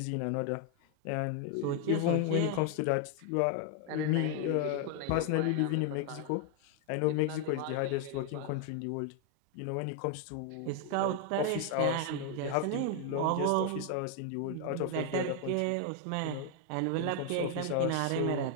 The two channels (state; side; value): different; both; correlation 0.01